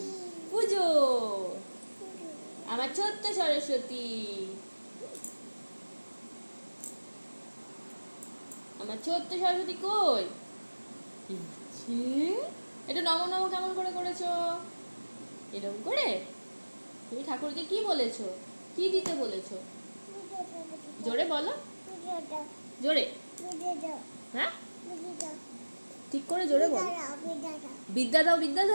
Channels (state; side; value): inverted; both; correlation -1.00